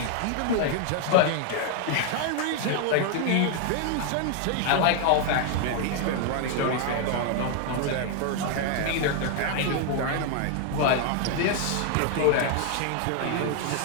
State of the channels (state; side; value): different; both; correlation 0.00